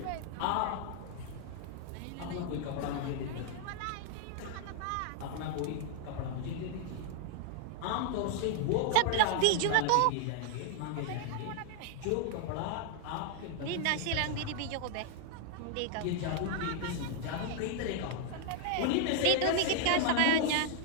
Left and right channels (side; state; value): both; different; correlation 0.00